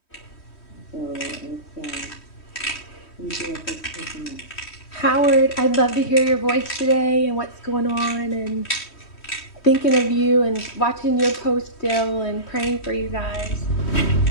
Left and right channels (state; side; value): late; right; 3.1 ms